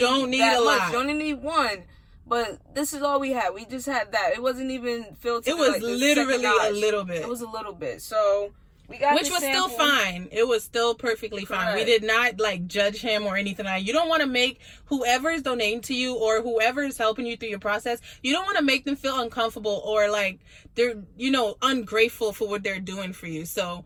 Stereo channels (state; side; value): identical; both; correlation 1.00